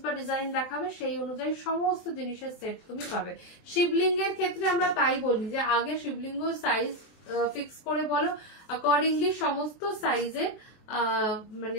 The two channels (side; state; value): right; late; 23 ms